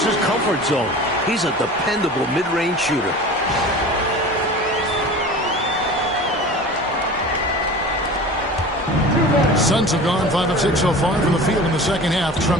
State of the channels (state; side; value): normal; both; correlation 0.37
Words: comfort zone. He's a dependable mid-range shooter. Suns have gone 5 of 6 so far from the field in the second half.